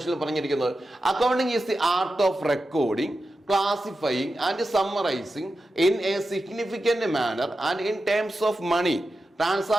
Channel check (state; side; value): normal; both; correlation 0.91